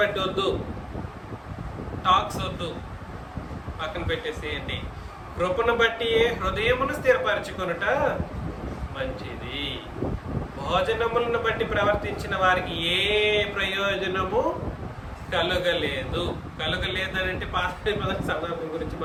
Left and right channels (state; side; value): identical; both; correlation 1.00